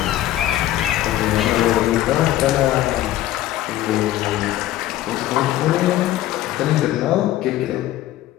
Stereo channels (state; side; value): quieter; right; 14.1 dB